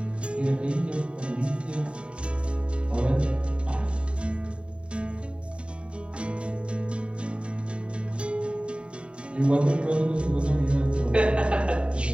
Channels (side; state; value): left; late; 0.056 ms